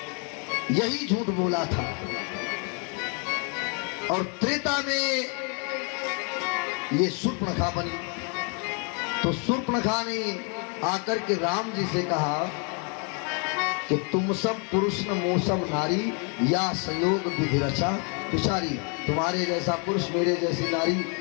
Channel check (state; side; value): quieter; right; 37.6 dB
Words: यही झूठ बोला था। और त्रेता में ये शूर्पणखा बनी। तो शूर्पणखा ने आकर के राम जी से कहा कि तुम सब पुरुष न मोसम नारी, या संयोग विधि रचा विचारी। तुम्हारे जैसा पुरुष मेरे जैसी नारी